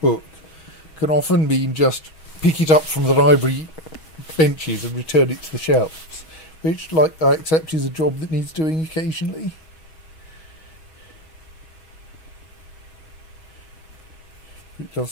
can often mean just pick it up from the library benches and return it to the shelves, which, like, I accept is a job that needs doing occasionally. It does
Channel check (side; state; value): right; late; 6.3 ms